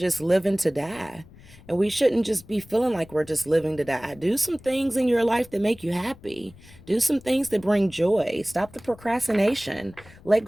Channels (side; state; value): left; noise; rumble, 22 dB below the sound